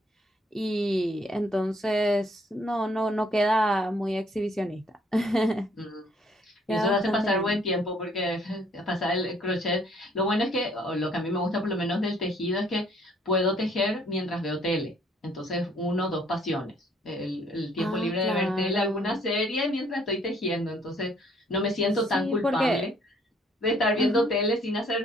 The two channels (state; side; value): normal; both; correlation 0.63